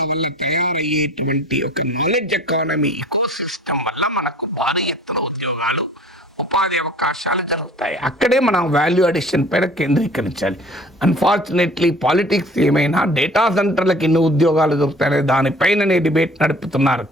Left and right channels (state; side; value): normal; both; correlation 0.48